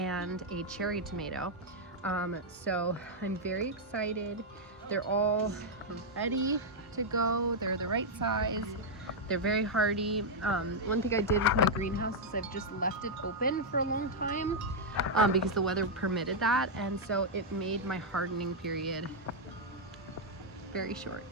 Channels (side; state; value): both; normal; correlation -0.03